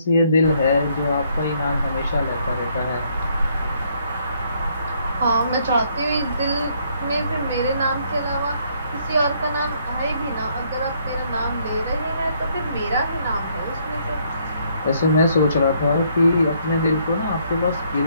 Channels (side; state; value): both; inverted; correlation -0.69